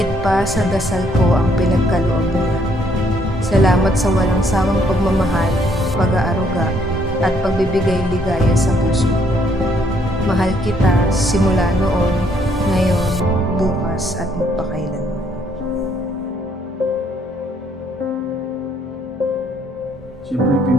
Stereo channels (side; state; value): both; normal; correlation 0.68